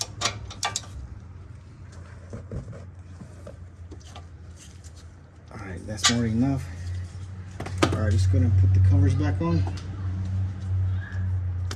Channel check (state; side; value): identical; both; correlation 1.00